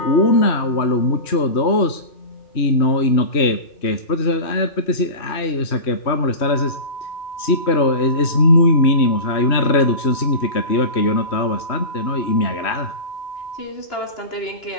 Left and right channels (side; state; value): right; late; 3.1 ms